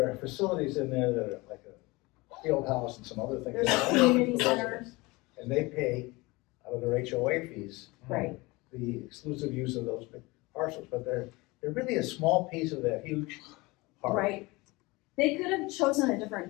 are facilities in there that are like a field house and some other things. There's that are community open to centers. residents. And they pay out of their HOA fees. Right. The exclusive use of those big parcels, but they're really a small piece of that huge park. Right. They could have chosen a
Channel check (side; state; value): right; quieter; 23.2 dB